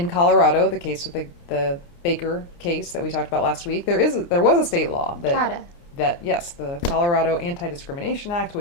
Colorado, the case with the Baker case that we talked about last week, there was a state law the Colorado Anti-Discrimination Act,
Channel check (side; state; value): right; late; 29 ms